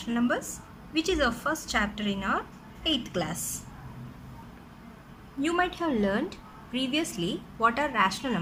numbers, which is our first chapter in our 8th class. You might have learned previously what are rational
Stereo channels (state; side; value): identical; both; correlation 1.00